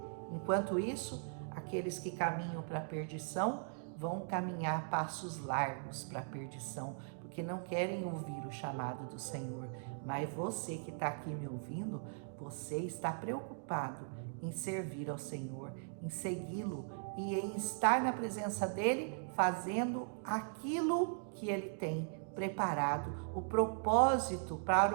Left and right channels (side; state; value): left; silent; digital silence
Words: Enquanto isso, aqueles que caminham para a perdição vão caminhar passos largos para a perdição, porque não querem ouvir o chamado do Senhor. Mas você que está aqui me ouvindo, você está preocupado em servir ao Senhor, em segui-lo e em estar na presença dele, fazendo aquilo que ele tem preparado, o propósito para